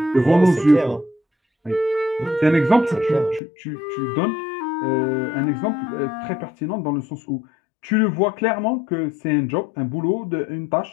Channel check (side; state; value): right; drops out; at 3.4 s